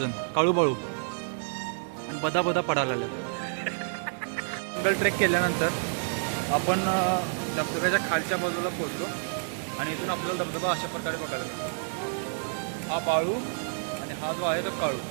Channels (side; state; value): left; silent; digital silence